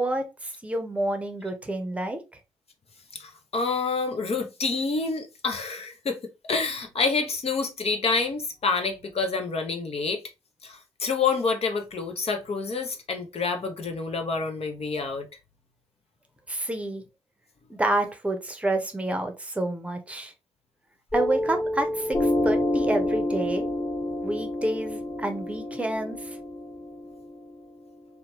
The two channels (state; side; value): normal; both; correlation 0.60